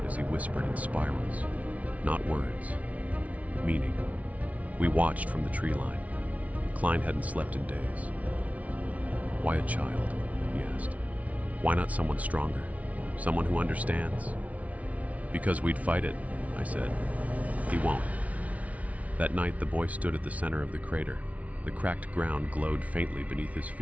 as he whispered in spirals. Not words, meaning. We watched from the tree line. Klein hadn't slept in days. Why a child? He asked. Why not someone stronger? Someone who understands? Because we'd fight it, I said. He won't. That night, the boy stood at the center of the crater. The cracked ground glowed faintly beneath his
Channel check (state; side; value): late; left; 0.068 ms